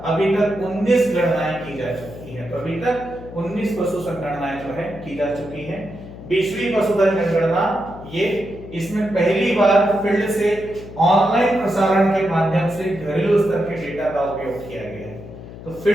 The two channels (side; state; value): left; noise; hum, 14 dB below the sound